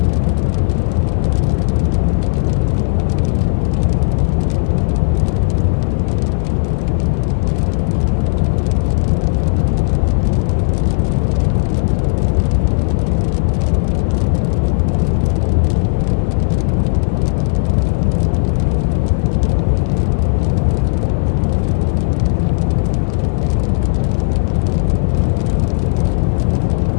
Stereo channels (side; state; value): right; silent; digital silence